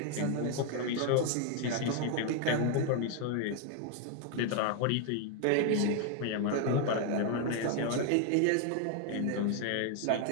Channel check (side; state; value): both; different; correlation 0.01